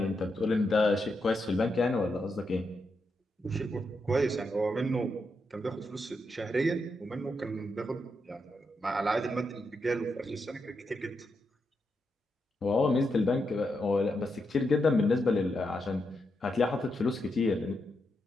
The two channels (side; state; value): both; normal; correlation 0.83